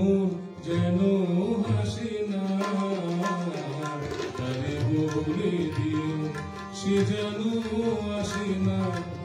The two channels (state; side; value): identical; both; correlation 1.00